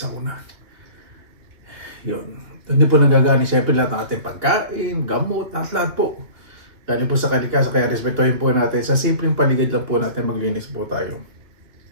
Yun. Doon din po nanggagaling siyempre lahat ng ating pagkain, gamot, lahat po. Galing po sa kalikasan, kaya respetuhin po natin. Sa simpleng paligid lang po natin maglinis po tayo.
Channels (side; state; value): left; late; 2.7 ms